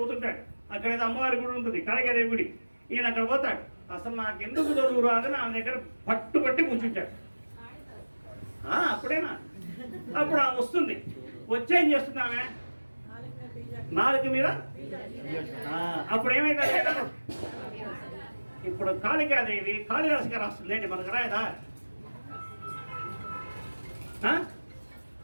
అక్కడ ఏదో అమ్మవారి గుడి ఉంటుంది, కాళికాదేవి గుడి. ఈయన అక్కడ పోతాడు. అసలు నాకు ఎందుకు చదువు రాదని ఆమె దగ్గర పట్టుబట్టి కూర్చుంటాడు. అప్పుడేనా? అప్పుడు ఆమె వస్తుంది. వచ్చేం చేస్తుంది ఆమె? నాలుగు మీద. అప్పుడు ఏమైంది? ఇప్పుడు కాళికాదేవి కాళిదాసు గారు వస్తుంది ఏంటి, మనకు రాయదా?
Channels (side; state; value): both; inverted; correlation -1.00